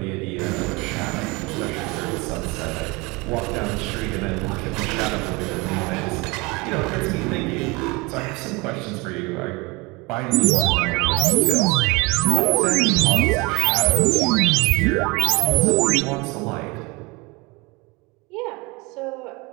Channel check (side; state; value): left; quieter; 25.6 dB